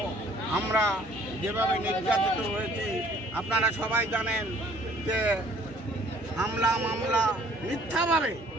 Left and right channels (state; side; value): normal; both; correlation 0.57